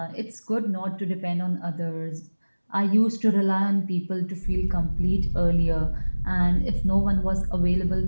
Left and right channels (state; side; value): inverted; both; correlation -1.00